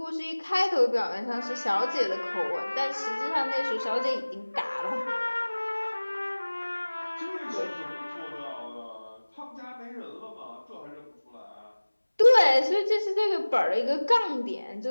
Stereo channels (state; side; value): inverted; both; correlation -1.00